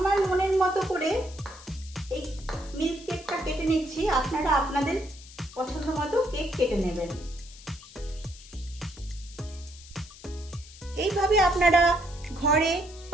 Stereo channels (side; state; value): left; noise; hiss, 19 dB below the sound